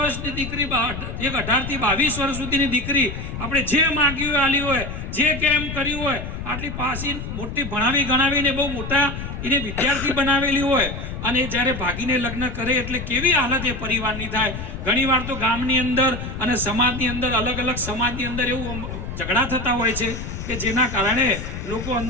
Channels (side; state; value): left; noise; rumble, 7 dB below the sound